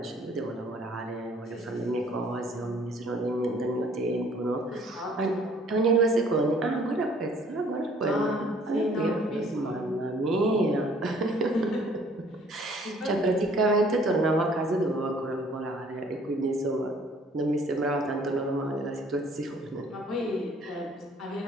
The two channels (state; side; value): normal; both; correlation 0.57